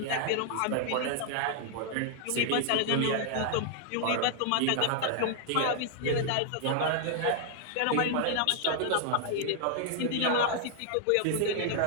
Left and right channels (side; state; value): both; different; correlation 0.00